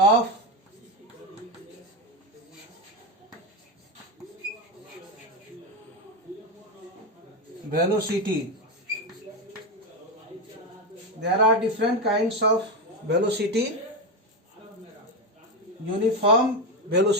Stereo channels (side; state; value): both; normal; correlation 0.12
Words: velocity. There are different kinds of velocity. Uniform